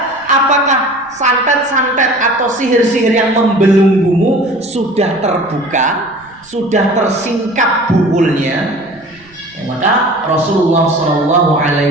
Apakah santet-santet atau sihir-sihir yang membelenggumu sudah terbuka, sudah tersingkap bukulnya? Ya, maka Rasulullah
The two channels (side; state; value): right; noise; rumble, 29 dB below the sound